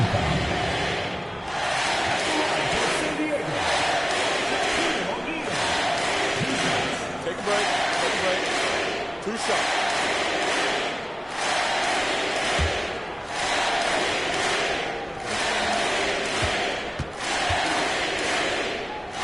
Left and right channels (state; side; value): identical; both; correlation 1.00